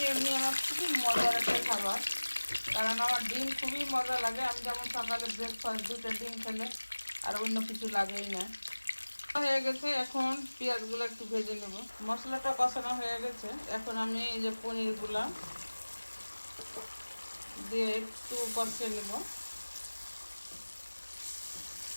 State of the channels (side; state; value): both; inverted; correlation -1.00